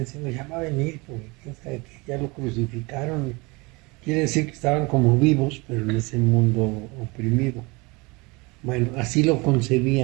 ya va a venir, porque quién sabe que ya lo crucificaron. Quiere decir que estaban como vivos, pero en ese mundo oprimido. Bueno, así lo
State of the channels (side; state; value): left; quieter; 25.9 dB